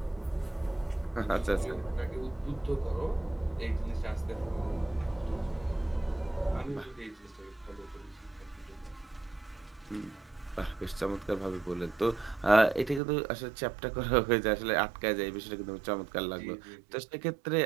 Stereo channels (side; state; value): left; drops out; at 13.0 s